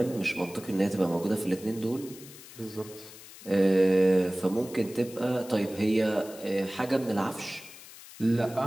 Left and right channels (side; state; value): left; noise; hiss, 17 dB below the sound